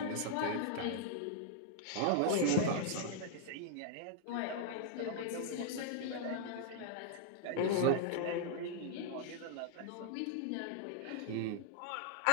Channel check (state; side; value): different; both; correlation -0.01